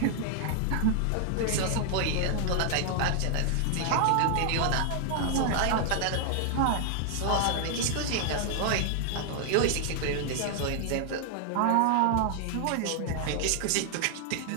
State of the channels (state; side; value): different; both; correlation 0.00